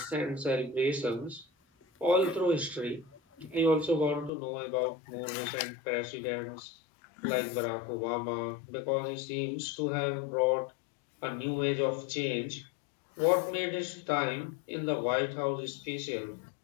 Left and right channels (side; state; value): right; drops out; at 4.3 s